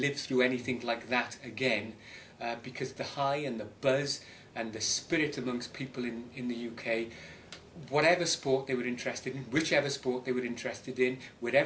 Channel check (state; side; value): identical; both; correlation 1.00